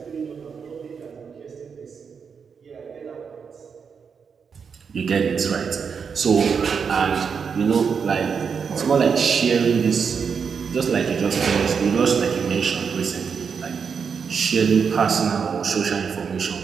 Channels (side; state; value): left; quieter; 6.2 dB